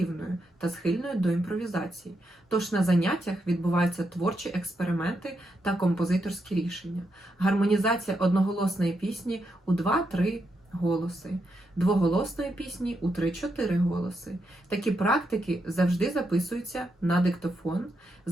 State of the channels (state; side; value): normal; both; correlation 0.82